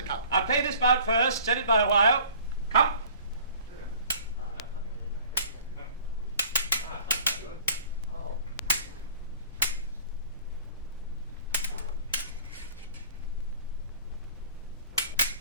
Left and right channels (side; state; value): both; inverted; correlation -0.48